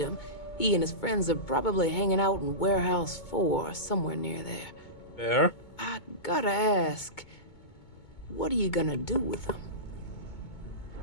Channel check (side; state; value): right; late; 2.2 ms